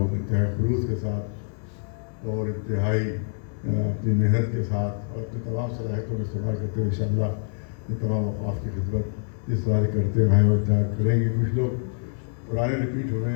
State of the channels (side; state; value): right; silent; 56 dB below the other